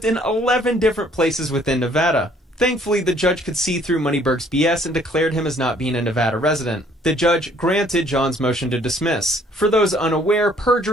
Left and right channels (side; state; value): both; normal; correlation 0.61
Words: in 11 different places within Nevada. Thankfully, the judge could see through MoneyBerg's BS and declared him as not being a Nevada resident. The judge granted John's motion to dismiss. For those unaware,